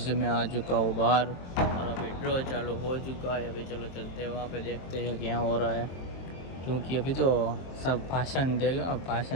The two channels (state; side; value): late; right; 23 ms